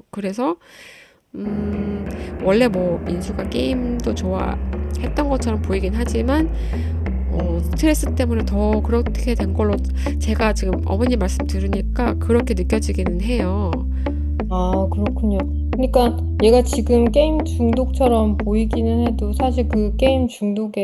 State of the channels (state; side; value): identical; both; correlation 1.00